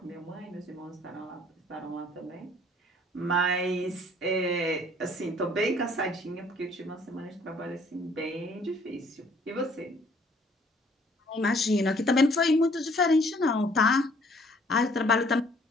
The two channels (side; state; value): both; normal; correlation 0.59